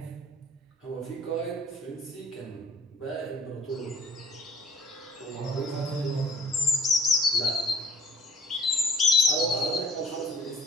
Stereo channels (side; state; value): both; normal; correlation 0.53